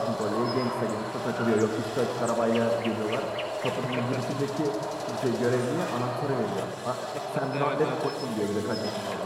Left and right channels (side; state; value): both; identical; correlation 1.00